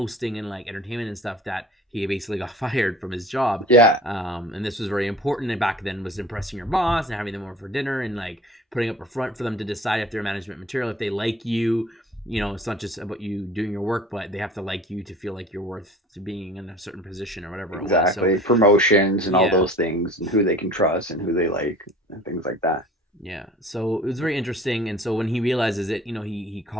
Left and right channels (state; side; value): normal; both; correlation 0.45